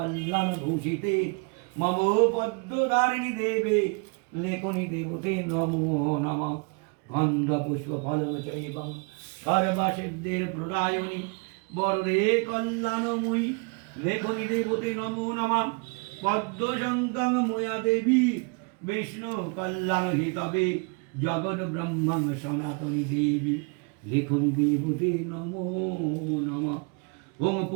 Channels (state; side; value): quieter; left; 34.2 dB